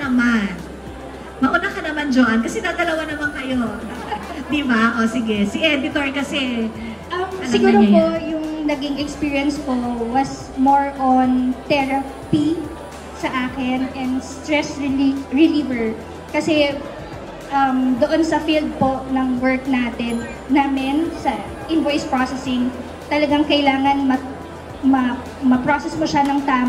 naman. Mauna ka naman, Joanne, kasi dadalawa naman kayo. Diba? O, sige. Si editor kasi, siguro po, yung naging experience ko was more on therapy sa akin and stress reliever. Kasi doon sa field po ng work namin sa invoice processing, talagang kailangan ma-process mo siya ng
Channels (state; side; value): identical; both; correlation 1.00